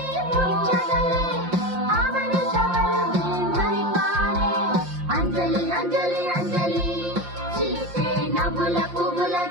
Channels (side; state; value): left; late; 5.7 ms